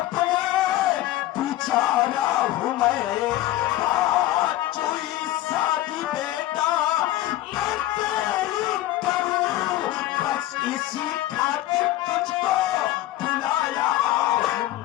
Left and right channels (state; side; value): quieter; right; 15.1 dB